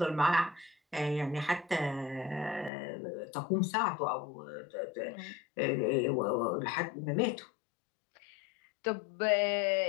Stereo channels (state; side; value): drops out; right; at 2.7 s